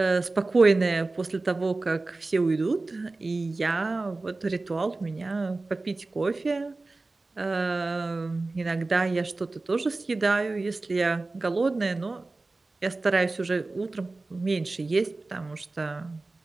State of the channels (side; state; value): left; quieter; 3.3 dB